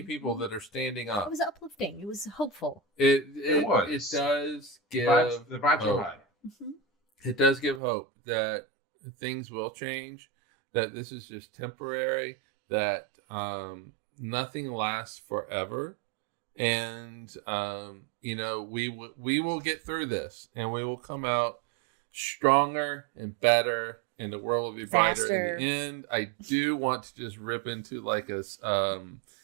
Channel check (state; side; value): drops out; left; at 7.8 s